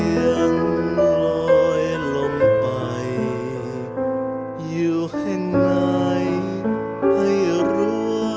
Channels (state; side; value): identical; both; correlation 1.00